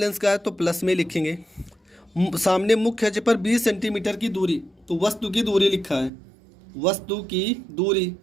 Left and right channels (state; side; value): drops out; left; at 6.1 s